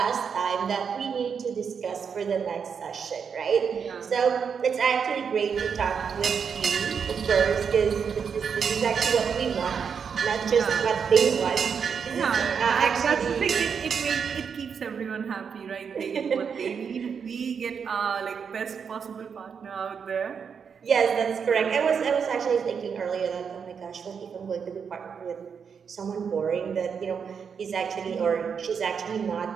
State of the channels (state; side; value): quieter; left; 6.6 dB